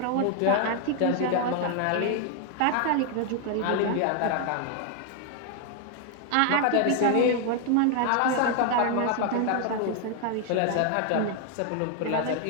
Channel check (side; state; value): both; different; correlation 0.00